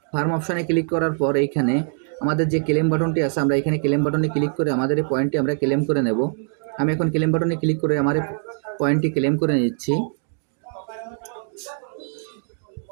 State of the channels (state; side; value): silent; left; 59 dB below the other